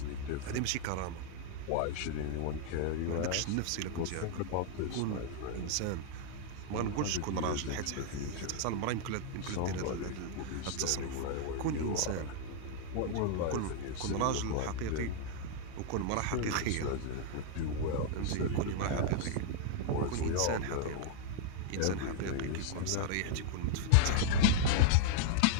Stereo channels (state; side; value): different; both; correlation -0.01